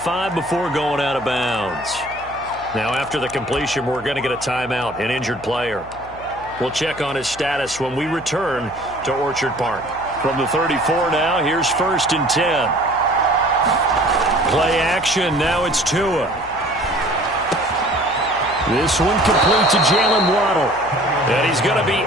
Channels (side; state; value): left; noise; hum, 20 dB below the sound